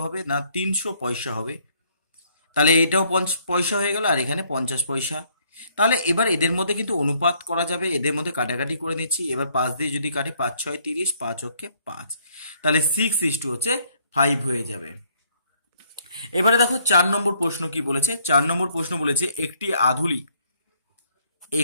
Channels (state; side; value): inverted; both; correlation -0.66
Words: হবে না, 300 পয়সা হবে। তাহলে এটাও 50 পয়সা হয়ে গেল, আর এখানে 50 পয়সা। তাহলে এবার এদের মধ্যে কিন্তু অনুপাত করা যাবে, এদের মধ্যে কাটাকাটি করে নিচ্ছি। এবার 5 দিয়ে যদি কাটি, 5 6 30, 5 অক্ষে 5, তাহলে 6:5 হয়ে যাবে। এবারে দেখো 4 নম্বর প্রশ্ন কি বলেছে। 4 নম্বর প্রশ্ন বলেছে একটি আধুলি,